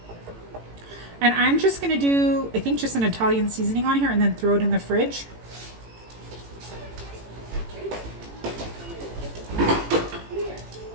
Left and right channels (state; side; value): late; left; 18 ms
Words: And I'm just gonna do, I think, just an Italian seasoning on here and then throw it in the fridge.